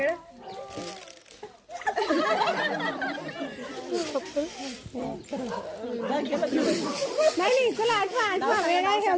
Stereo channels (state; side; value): identical; both; correlation 1.00